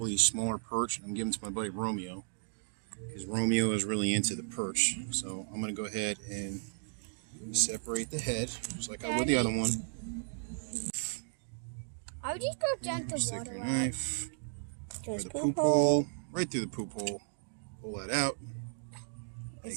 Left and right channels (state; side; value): silent; left; digital silence